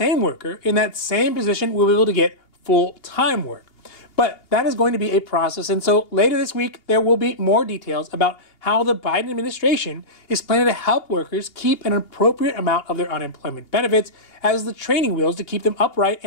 worker in that same position will be able to get full-time work. But that is going to be a process, and so later this week there will be more details about how the Biden administration is planning to help workers keep an appropriate amount of their unemployment benefits as the training wheels to keep them upright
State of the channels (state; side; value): late; right; 2.8 ms